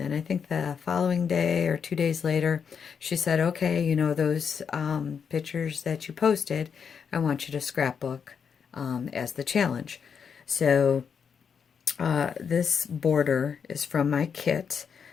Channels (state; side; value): quieter; right; 6.8 dB